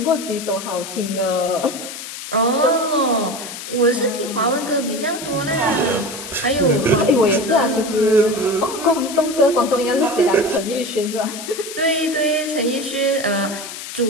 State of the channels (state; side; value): noise; left; hiss, 10 dB below the sound